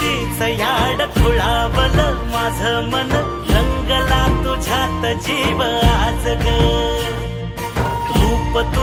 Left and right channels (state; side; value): identical; both; correlation 1.00